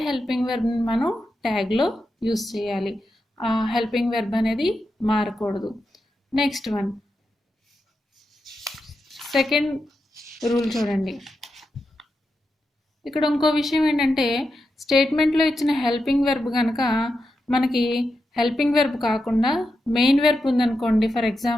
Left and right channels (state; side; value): normal; both; correlation 0.87